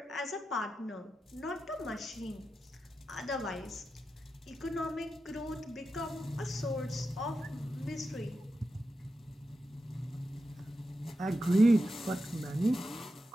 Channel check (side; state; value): both; normal; correlation 0.90